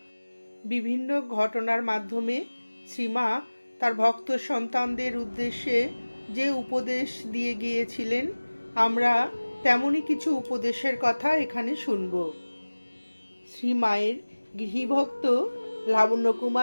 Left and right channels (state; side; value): inverted; both; correlation -1.00